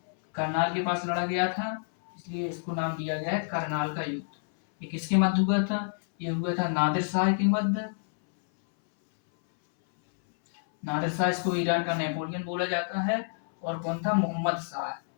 करनाल के पास लड़ा गया था, इसलिए इसको नाम दिया गया है करनाल का युद्ध। ये किसके मध्य हुआ था? ये हुआ था नादिर शाह के मध्य। नादिर शाह, इसको ईरान का नेपोलियन बोला जाता है। और कौन था? मोहम्मद शाह।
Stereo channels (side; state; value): right; silent; 59 dB below the other